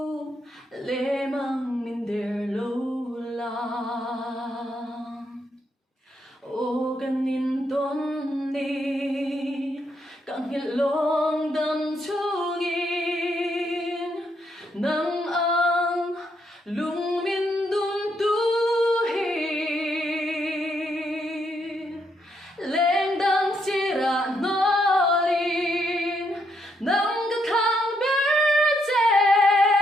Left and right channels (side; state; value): both; normal; correlation 0.76